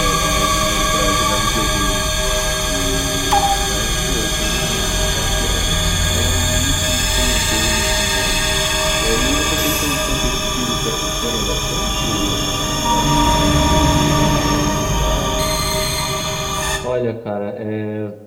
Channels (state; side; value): identical; both; correlation 1.00